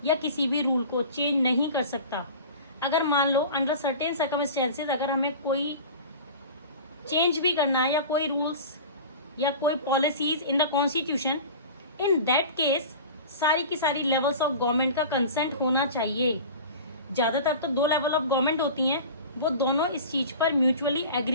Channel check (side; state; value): both; inverted; correlation -0.36